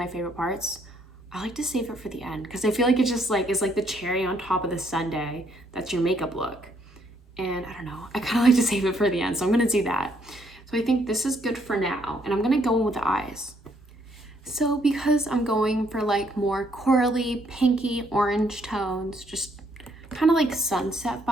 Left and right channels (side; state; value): both; normal; correlation 0.70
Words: my favorite parts. I like to save it for the end because I feel like it just like is like the cherry on top of the sundae. That's your makeup look. And I don't know, I kind of like to save it for the end, so I'm gonna do that. So I think this is good for now, and I'm gonna go in with the eyes. So because I'm going for like more corally, pinky, orange tones, just kind of like sunset